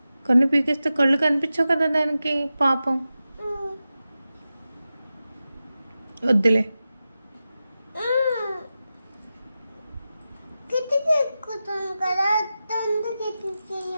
కన్ను పీకేస్తే కళ్ళు కనిపించవు కదా దానికి, పాపం. వద్దులే. కిటికీ ఎక్కుతాను కదా అందుకు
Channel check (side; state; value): both; inverted; correlation -0.93